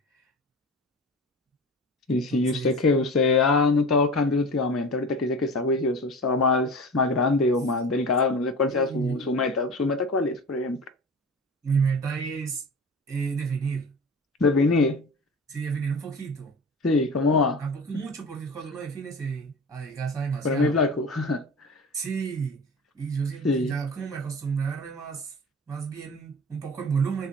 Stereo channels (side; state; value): both; normal; correlation 0.34